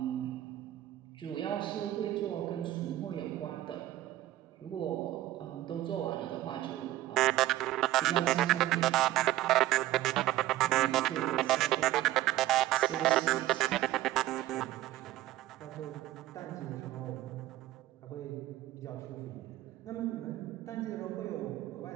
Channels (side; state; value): left; quieter; 14.7 dB